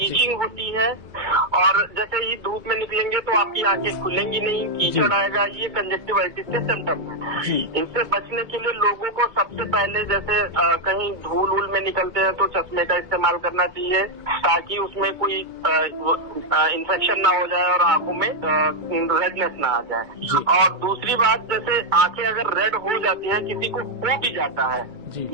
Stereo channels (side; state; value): left; late; 2.2 ms